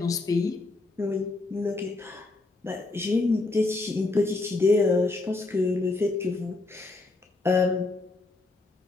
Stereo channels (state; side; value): quieter; right; 3.2 dB